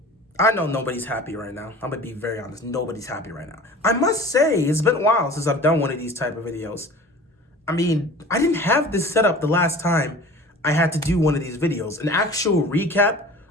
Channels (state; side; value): normal; both; correlation 0.41